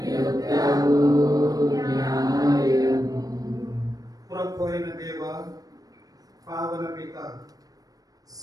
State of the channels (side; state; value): left; late; 0.18 ms